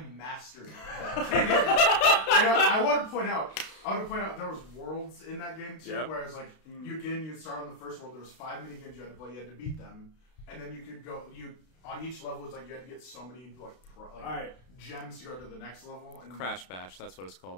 mastered that game. And I want to point out there was worlds in that game too, Yep. where it's like you'd start on the first world. There was 5 mini games you had to play. You had to beat them, and then you could go. On each level, it's like you had to get so many gems to go to the next level. And Crash Bash, that's what it's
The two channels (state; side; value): late; right; 32 ms